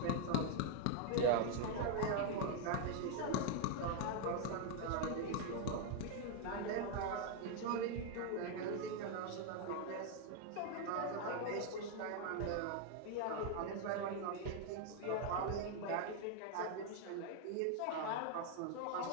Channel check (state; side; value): different; both; correlation 0.01